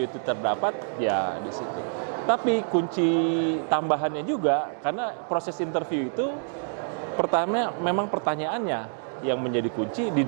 itu terdapat, ya di situ. Tapi kunci tambahannya juga, karena proses interview itu pertama memang pertanyaannya yang menjadi kunci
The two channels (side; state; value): left; silent; digital silence